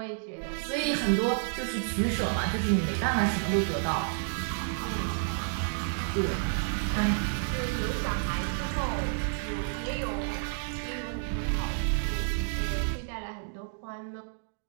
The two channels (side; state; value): left; silent; digital silence